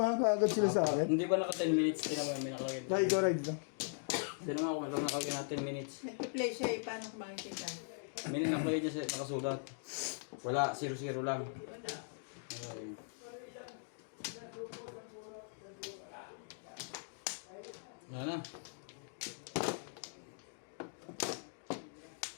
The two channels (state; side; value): silent; right; digital silence